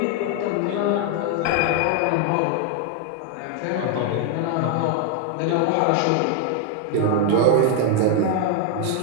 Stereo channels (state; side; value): different; both; correlation 0.00